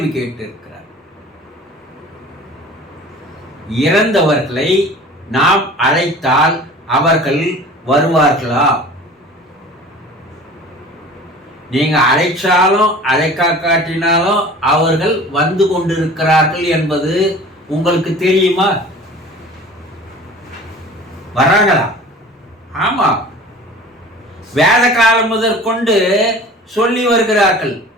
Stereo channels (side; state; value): both; normal; correlation 0.42